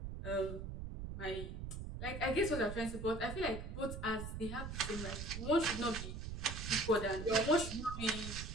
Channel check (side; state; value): right; noise; rumble, 6 dB below the sound